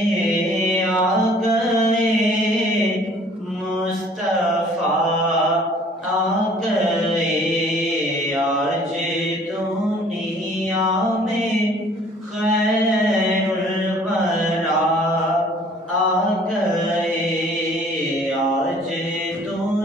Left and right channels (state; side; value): normal; both; correlation 0.55